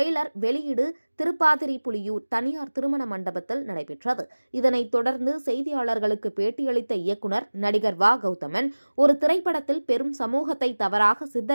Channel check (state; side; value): inverted; both; correlation -1.00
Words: வெளியீடு திருப்பாதிரி புலியூர் தனியார் திருமண மண்டபத்தில் நடைபெற்றது. இதனைத் தொடர்ந்து செய்தியாளர்களுக்கு பேட்டியளித்த இயக்குனர் நடிகர் கௌதமன் ஒரு திரைப்படத்தில் பெரும் சமூகத்தை தவறாக